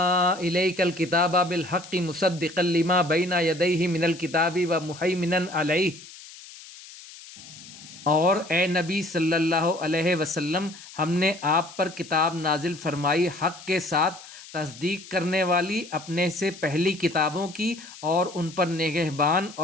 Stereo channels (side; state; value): left; noise; hiss, 17 dB below the sound